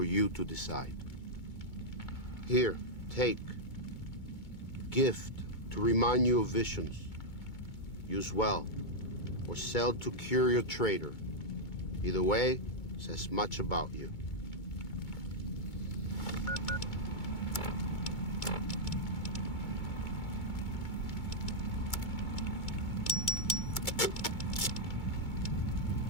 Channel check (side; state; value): right; late; 2.2 ms